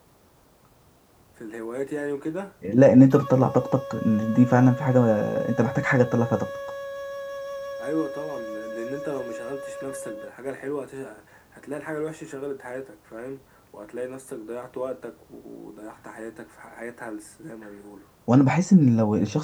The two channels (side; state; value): both; identical; correlation 1.00